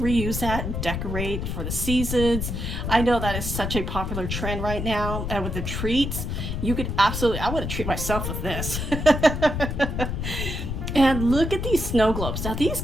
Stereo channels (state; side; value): noise; left; rumble, 3 dB below the sound